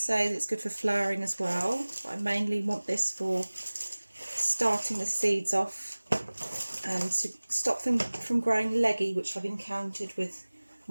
that it's good for flowering as well, but I mainly want this for starting the seeds off and to stop them from growing leggy, which I've encountered with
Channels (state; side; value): inverted; both; correlation -1.00